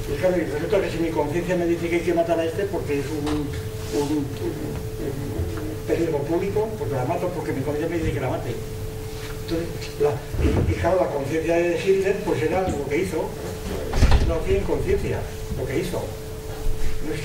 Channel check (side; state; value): both; identical; correlation 1.00